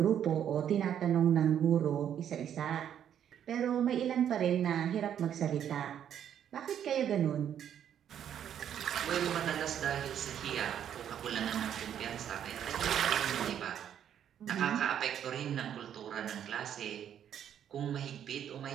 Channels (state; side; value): quieter; left; 9.5 dB